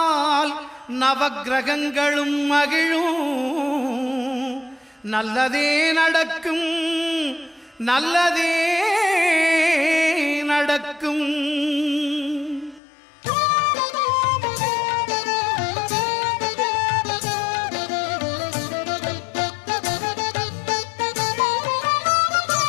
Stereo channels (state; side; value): drops out; right; at 12.8 s